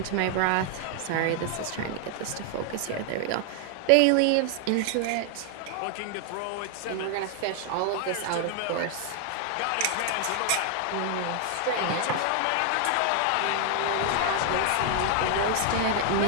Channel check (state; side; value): different; both; correlation 0.00